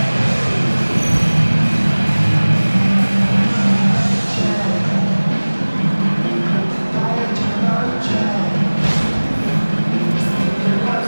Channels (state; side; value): inverted; both; correlation -1.00